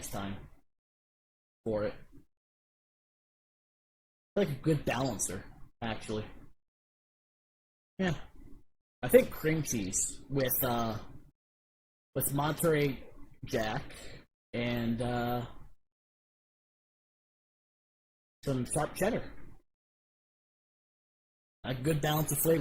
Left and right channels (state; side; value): identical; both; correlation 1.00